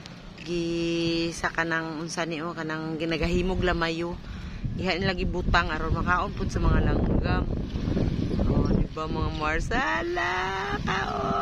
Gi sa kanang unsa ni o kanang ginagahimog lamayo. Ihain lagi butang aron makaon pud sa mga langgam. Oh, di ba mga Mars? Ala,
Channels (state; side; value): identical; both; correlation 1.00